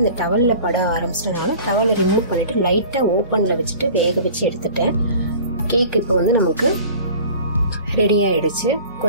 டவலில் பட ஆரம்பிச்சிட்டனால டவலை ரிமூவ் பண்ணிவிட்டு லைட்டாக ஓப்பனில் வச்சுட்டு வேக வச்சு எடுத்துட்டேன். கேக் இப்போ வந்து நமக்கு ரெடி ஆகிடுச்சு.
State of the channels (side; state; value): both; inverted; correlation -0.44